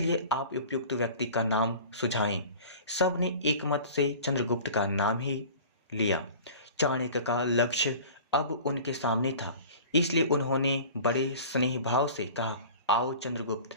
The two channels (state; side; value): inverted; both; correlation -0.41